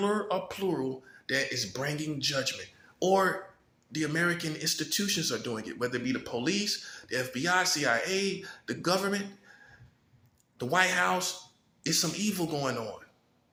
or plural, that is bringing judgment. Or the American institutions are doing it, whether it be the police, the FBI, CIA, the government, the White House. It's some evil going on.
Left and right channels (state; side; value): identical; both; correlation 1.00